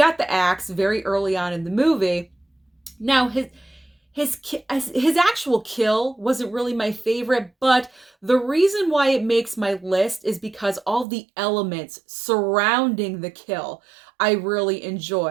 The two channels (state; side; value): drops out; left; at 11.1 s